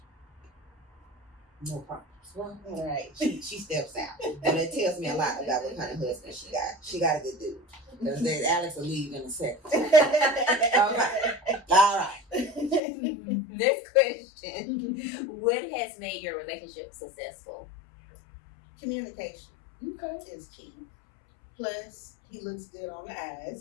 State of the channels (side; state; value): right; drops out; at 12.8 s